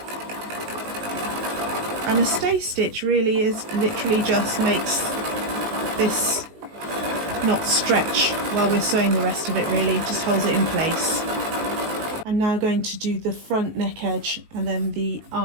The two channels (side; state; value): left; late; 19 ms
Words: And a stay stitch really is literally just makes this not stretch while we're sewing the rest of it, really, it just holds it in place. I'm now going to do the front neck edge and then the